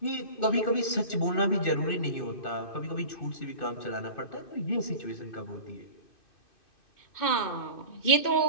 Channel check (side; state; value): right; late; 2.5 ms